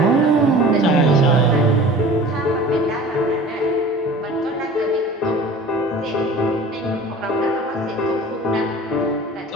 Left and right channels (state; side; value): normal; both; correlation 0.42